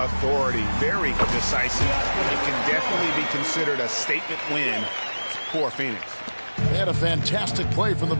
Very decisive. It can definitely be considered a statement win for Phoenix. They had a fantastic play from the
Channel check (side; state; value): both; inverted; correlation -1.00